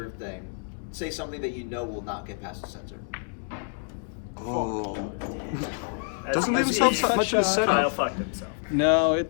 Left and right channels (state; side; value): silent; right; 60 dB below the other